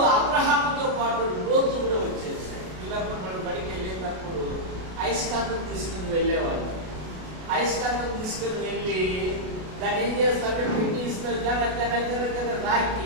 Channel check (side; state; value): left; late; 33 ms